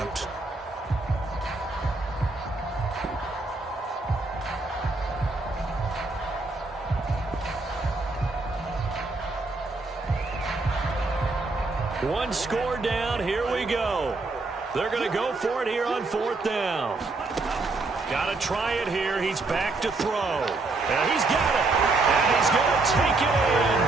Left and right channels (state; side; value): quieter; left; 3.4 dB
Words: One score down, here we go. They're going to go for it here on 4th down. Got to try it here. He's back to throw. And he's got it. And he's going to take it in.